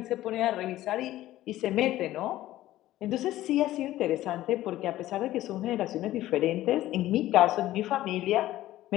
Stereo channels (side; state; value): right; quieter; 14.9 dB